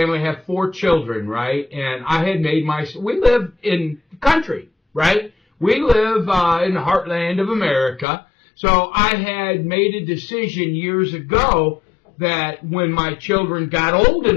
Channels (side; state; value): right; drops out; at 8.1 s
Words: I have 4 children, right? And I had made we live in the country, right? We live in the heartland of America. So I had made a decision years ago that when my children got old